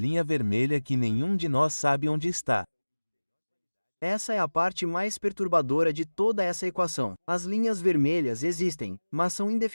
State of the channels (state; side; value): inverted; both; correlation -1.00